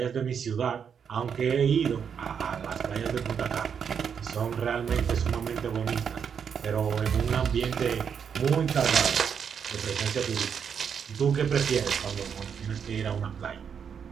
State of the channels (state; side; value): quieter; left; 7.2 dB